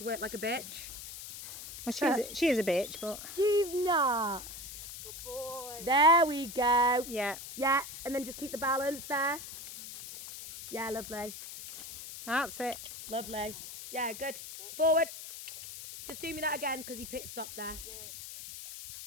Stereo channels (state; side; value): noise; left; hiss, 11 dB below the sound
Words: work like a bitch. Well, she is a bitch, but... She's not. Good boy. There we go. Yeah. Yeah, and then just keep the balance there. Yeah, lovely. That's it. Lovely. Yeah, good. Forward. Just do me that again because he pit stopped there. Yeah.